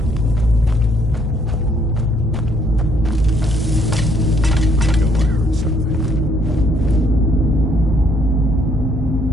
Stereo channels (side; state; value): both; normal; correlation 0.67